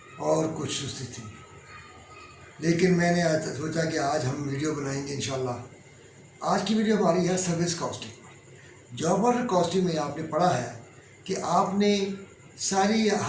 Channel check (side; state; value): both; identical; correlation 1.00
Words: और कुछ सुस्ती थी। लेकिन मैंने आज सोचा कि आज हम वीडियो बनाएंगे इंशाल्लाह। आज की वीडियो हमारी है सर्विस कॉस्टिंग पर। जॉब ऑर्डर कॉस्टिंग में आपने पढ़ा है कि आपने सारी